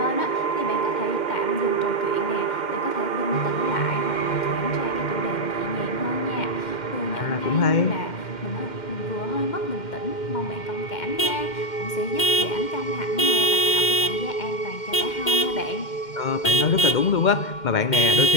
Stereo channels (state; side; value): late; right; 2.1 ms